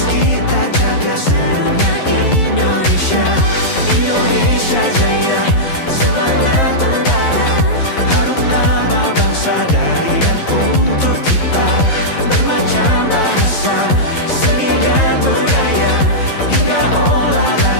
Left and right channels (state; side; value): late; right; 11 ms